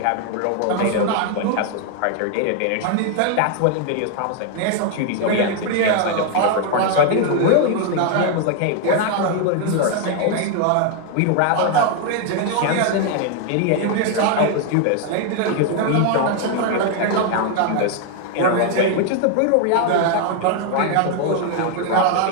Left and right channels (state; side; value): different; both; correlation 0.00